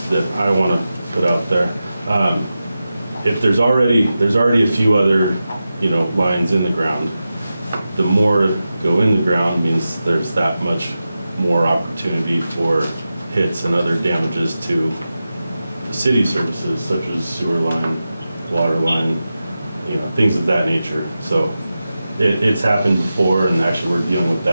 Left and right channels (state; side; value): inverted; both; correlation -0.92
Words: that I want to put out there. If there's already a few other, lines in the ground, the more go in the ground means there's that much more opportunity for hits and other damages to the city services, such as sewer line, water line, things of that nature. So it's happened before, and actually we're dealing with